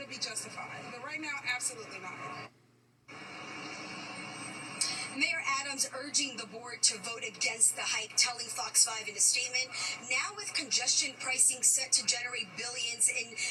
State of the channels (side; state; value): both; identical; correlation 1.00